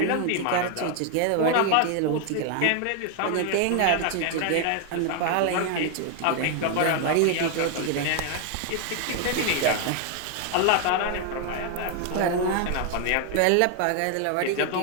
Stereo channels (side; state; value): both; different; correlation 0.00